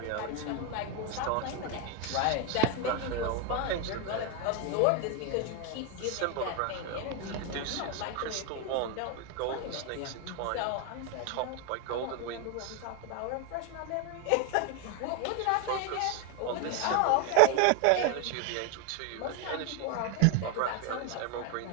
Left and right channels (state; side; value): different; both; correlation 0.02